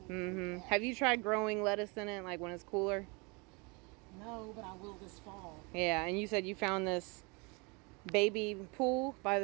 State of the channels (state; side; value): quieter; left; 29.4 dB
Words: And Have you tried growing lettuce in it, like when it's cooler? No, but I will this fall. Yeah, and you said you found this baby pool by